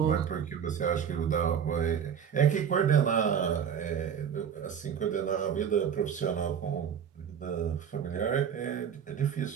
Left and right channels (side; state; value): left; quieter; 8.0 dB